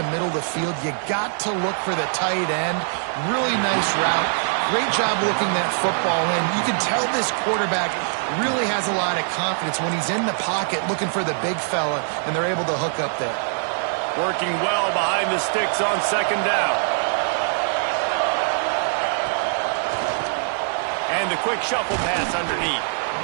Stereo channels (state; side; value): silent; left; digital silence